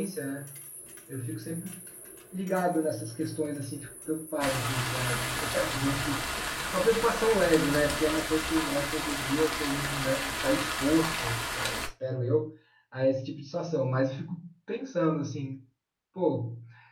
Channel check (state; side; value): identical; both; correlation 1.00